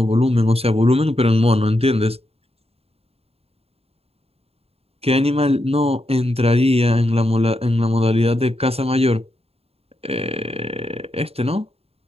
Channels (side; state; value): left; late; 0.29 ms